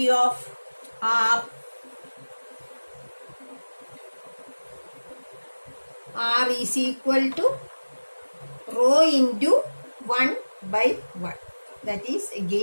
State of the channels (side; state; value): both; inverted; correlation -1.00